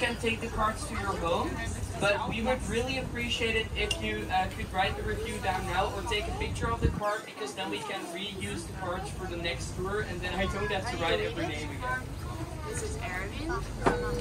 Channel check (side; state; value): both; identical; correlation 1.00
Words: take the cards to your home. But we would really appreciate it if you could write the review down now or take a picture of the card, because then we can reuse the cards for the next tour, and then I don't have to write every name again. This is Erwin,